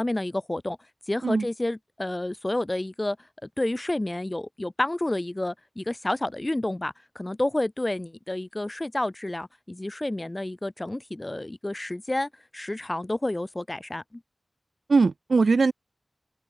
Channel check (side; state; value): both; normal; correlation 0.96